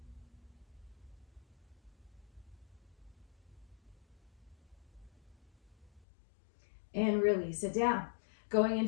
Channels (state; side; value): drops out; right; at 6.1 s